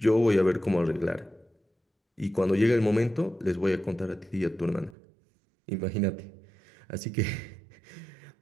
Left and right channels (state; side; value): drops out; left; at 5.0 s